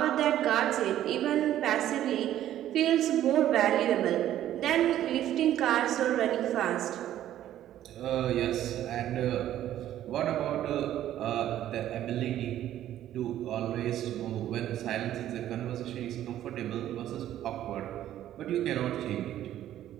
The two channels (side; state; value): left; quieter; 12.3 dB